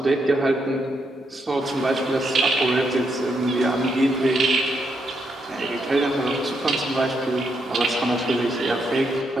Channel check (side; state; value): both; normal; correlation 0.79